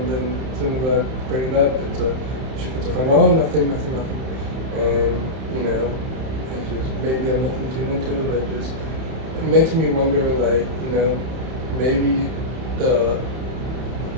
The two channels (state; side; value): late; left; 31 ms